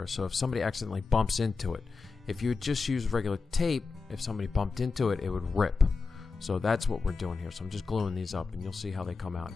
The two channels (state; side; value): quieter; right; 4.5 dB